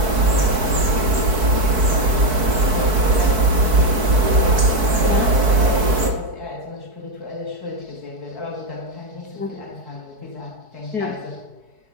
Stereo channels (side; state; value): left; late; 4.6 ms